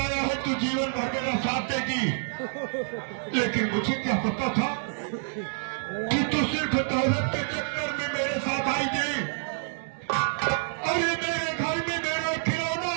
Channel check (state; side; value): silent; left; digital silence